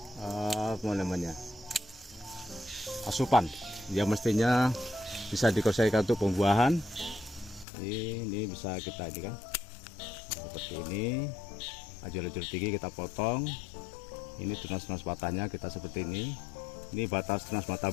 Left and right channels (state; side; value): drops out; right; at 7.7 s